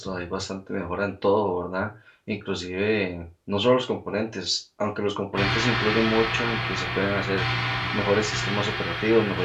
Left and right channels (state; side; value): identical; both; correlation 1.00